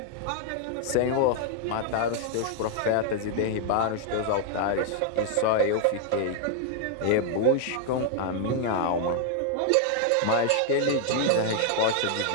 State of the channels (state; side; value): different; both; correlation 0.00